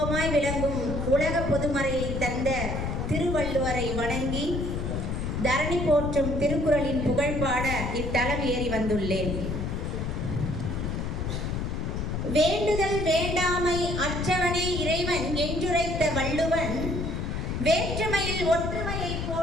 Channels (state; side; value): noise; left; rumble, 2 dB below the sound